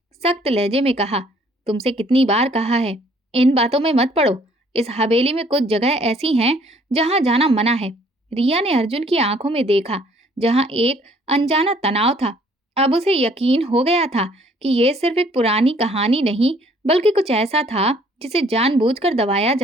सख्त लहजे में कहा, तुमसे कितनी बार कहा है, इन बातों में मत पड़ो। इस हवेली में कुछ जगह ऐसी हैं जहां जाना मना है। रिया ने अर्जुन की आंखों में देखा, जहां एक अनजाना तनाव था। अब उसे यकीन हो गया था कि यह सिर्फ एक पुरानी कहानी नहीं, बल्कि कुछ ऐसा था जिसे जानबूझकर दबाया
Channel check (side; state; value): both; normal; correlation 0.60